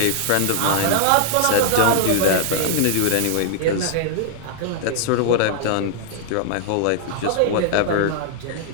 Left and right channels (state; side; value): different; both; correlation -0.01